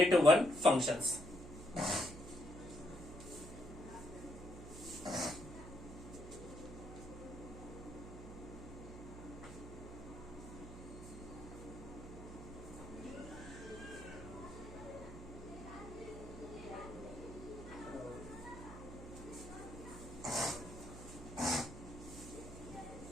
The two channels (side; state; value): right; noise; hum, 12 dB below the sound